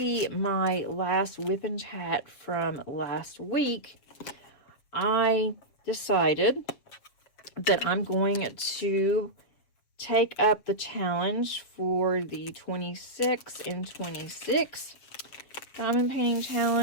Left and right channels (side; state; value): right; late; 7.2 ms